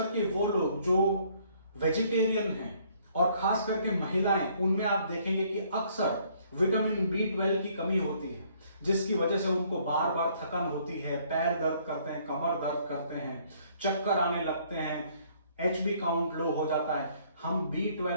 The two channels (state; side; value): inverted; both; correlation -0.63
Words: वो लोग जो वेजिटेरियन हैं और खास करके महिलाएं, उनमें आप देखेंगे कि अक्सर विटामिन B12 की कमी होती है, जिसकी वजह से उनको बार बार थकन होती है, पैर दर्द करते हैं, कमर दर्द करते हैं, चक्कर आने लगते हैं, HB काउंट लो हो जाता है। हम